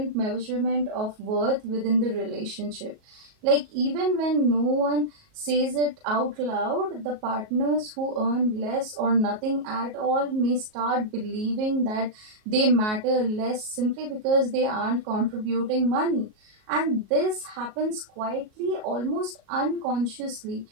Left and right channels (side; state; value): left; late; 38 ms